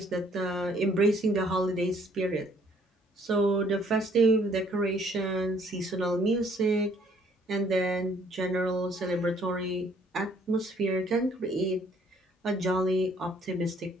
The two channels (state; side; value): normal; both; correlation 0.62